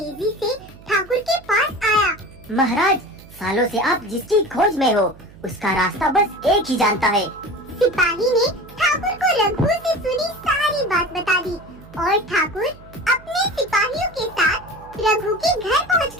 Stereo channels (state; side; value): noise; right; hum, 21 dB below the sound